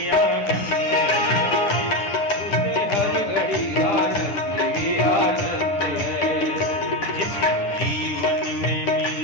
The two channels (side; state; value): right; late; 9.9 ms